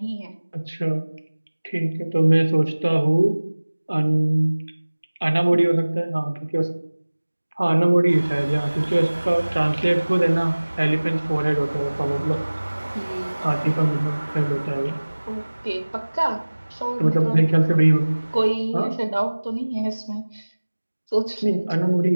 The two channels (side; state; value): both; inverted; correlation -1.00